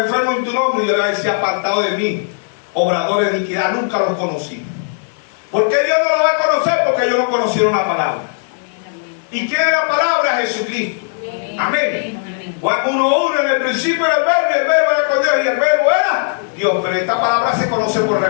enfermos en tu nombre. Y yo le voy a decir: apartado de mí, obradores de iniquidad, nunca los conocí. ¿Por qué Dios no lo va a conocer? Porque ellos no conocieron la palabra. ¿Y quién es la palabra? Jesucristo. Amén. Juan 1:1: en el principio era el verbo, y el verbo era con Dios, y el verbo era Dios. Pero esta palabra se conoce por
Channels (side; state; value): right; silent; 68 dB below the other